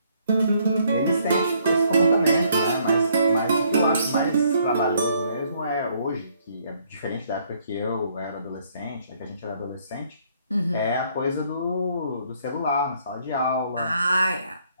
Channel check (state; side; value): inverted; both; correlation -0.67